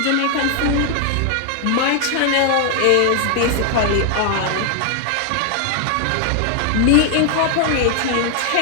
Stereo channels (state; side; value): different; both; correlation 0.00